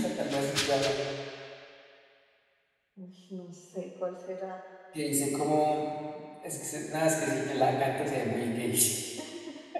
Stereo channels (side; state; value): both; identical; correlation 1.00